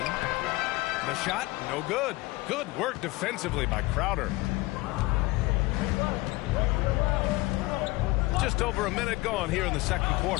The shot, no good. Good work defensively by Crowder. Just over a minute gone here in the second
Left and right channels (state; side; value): quieter; right; 21.5 dB